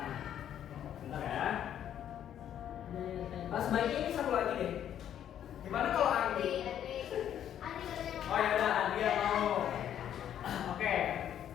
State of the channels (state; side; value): quieter; right; 10.2 dB